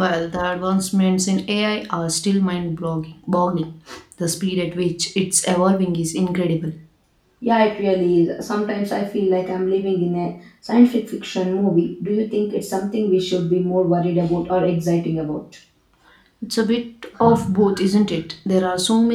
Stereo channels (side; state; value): both; identical; correlation 1.00